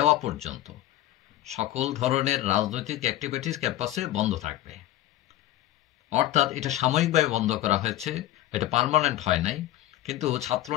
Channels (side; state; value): right; quieter; 14.5 dB